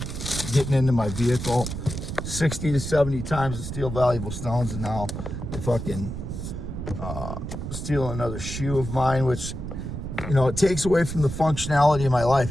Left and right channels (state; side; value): noise; right; rumble, 6 dB below the sound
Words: getting into my vehicle 60 to 70 times to steal valuable stones, and now they fucking steal another shoe of mine, which, it takes away from the functionality of my